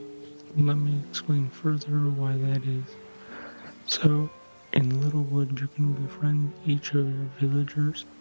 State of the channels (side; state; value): both; inverted; correlation -1.00